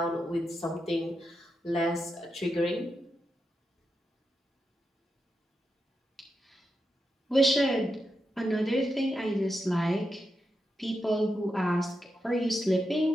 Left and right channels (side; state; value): both; normal; correlation 0.87